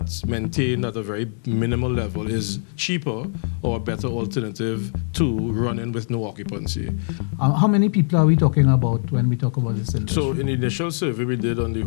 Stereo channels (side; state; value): right; silent; digital silence